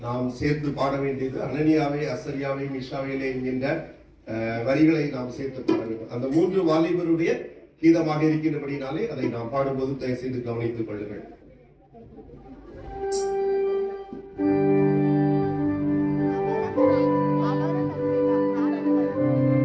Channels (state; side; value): identical; both; correlation 1.00